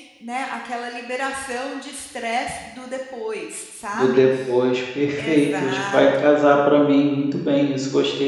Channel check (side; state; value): both; identical; correlation 1.00